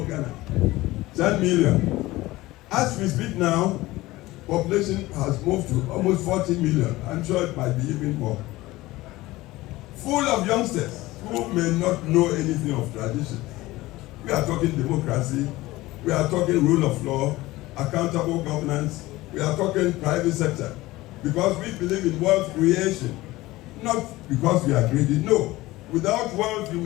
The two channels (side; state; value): right; quieter; 18.7 dB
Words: Ghana. 10 million. As we speak now, population has moved to almost 40 million. I'm sure it might be even more. Full of youngsters who may not know anything of tradition. We are talking democracy. We are talking rule of law, accountable governance. We are talking private sector. Because we believe in wealth creation. Not because we are greedy. No. Without wealth, you